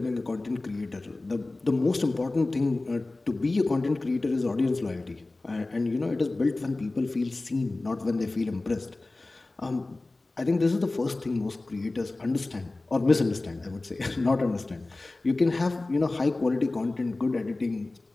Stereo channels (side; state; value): right; quieter; 3.1 dB